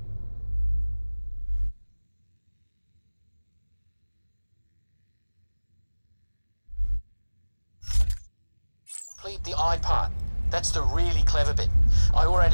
complete the eye part. That's the really clever bit. I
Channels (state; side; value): inverted; both; correlation -1.00